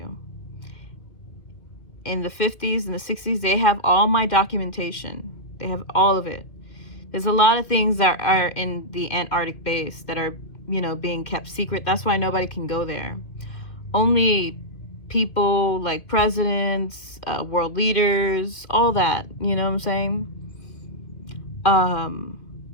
In the 50s and the 60s, they have all my documentation. They have all of it. There's a lot of things that are in the Antarctic base that are, you know, being kept secret. That's why nobody can go there. Only people like presidents, world leaders, all that, you know what I'm saying?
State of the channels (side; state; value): right; late; 2.6 ms